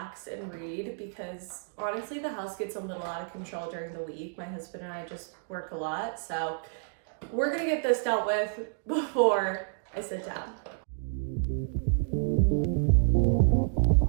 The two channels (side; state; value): left; silent; digital silence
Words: and read, because honestly the house gets a little out of control during the week. My husband and I just work a lot, so we're gonna get this dealt with before I sit down.